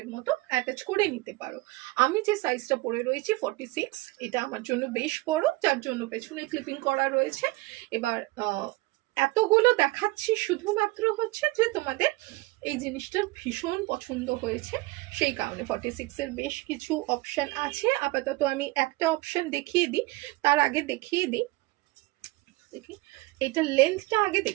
মতো অ্যাটাচ করে নিতে পারো। আমি যে সাইজটা পরে রয়েছি 46, এটা আমার জন্য বেশ বড়, যার জন্য পেছনে ক্লিপিং করা রয়েছে। এবার এতগুলো দেখাচ্ছি শুধুমাত্র হচ্ছে যে তোমাদের এই জিনিসটা ভীষণ পছন্দ হয়েছে, সেই কারণে 46 এর বেশ কিছু অপশন আছে। আপাতত আমি একটা অপশন দেখিয়ে দিই, তার আগে দেখিয়ে দিই, দেখি এটা লেন্থটা আগে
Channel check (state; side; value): quieter; left; 21.2 dB